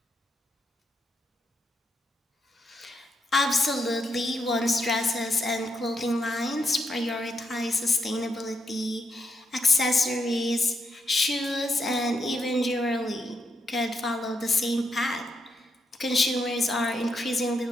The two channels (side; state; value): both; normal; correlation 0.81